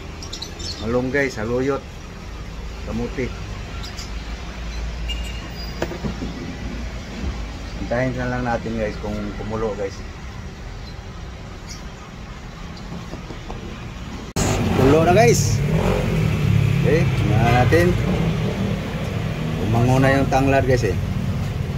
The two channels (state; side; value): identical; both; correlation 1.00